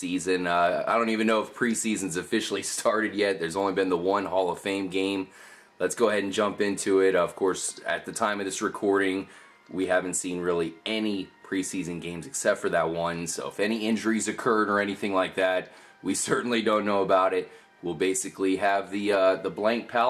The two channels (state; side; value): identical; both; correlation 1.00